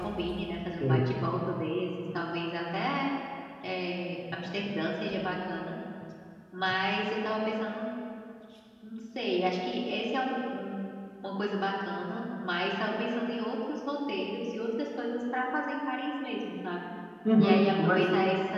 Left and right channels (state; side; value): identical; both; correlation 1.00